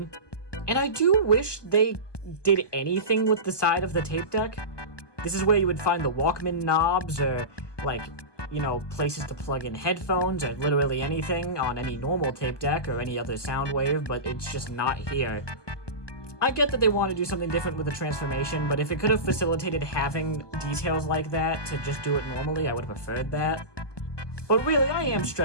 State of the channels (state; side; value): late; right; 1.2 ms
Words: And I do wish they did anything with the side of the tape deck. This is where you would find the Walkman knobs, or, like, you know, places to plug in headphones, or literally anything on any normal tape deck or any other Soundwave, but it's just not here. I get that they want to do something different with the transformation, but if it could have facilitated having details like that to just do it normally, I would have preferred that. But really, I am